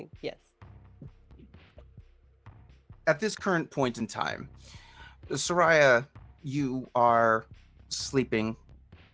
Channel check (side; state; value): both; identical; correlation 1.00